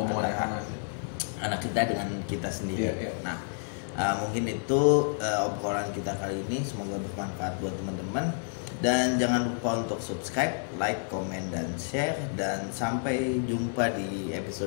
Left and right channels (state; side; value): silent; right; digital silence